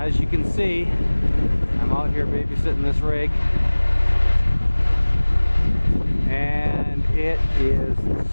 you can see, I'm out here babysitting this rig, and it is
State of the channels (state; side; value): inverted; both; correlation -1.00